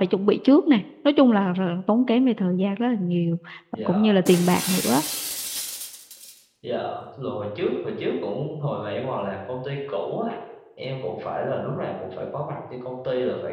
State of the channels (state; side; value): identical; both; correlation 1.00